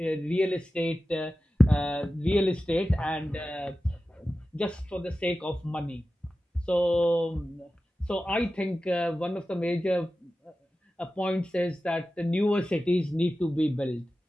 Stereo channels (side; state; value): both; normal; correlation 0.94